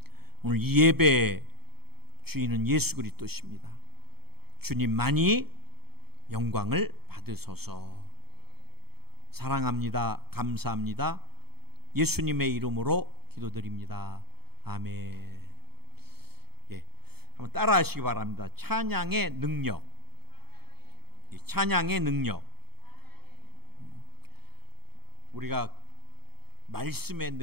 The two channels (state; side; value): late; left; 0.96 ms